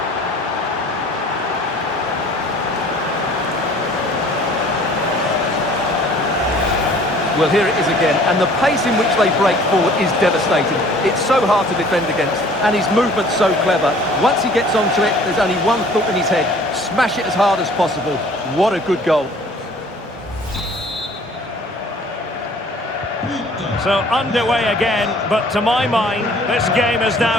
Well, here it is again, and the pace in which they break forward is devastating. It's so hard to defend against, and his movement's so clever. Once he gets onto it, there's only one thought in his head: smash it as hard as possible. What a good goal. So underway again, but to my mind, this game is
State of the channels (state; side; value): normal; both; correlation 0.52